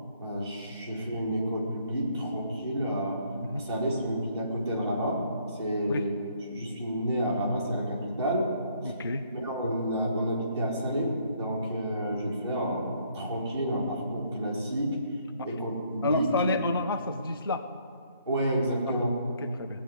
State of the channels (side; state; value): both; inverted; correlation -0.66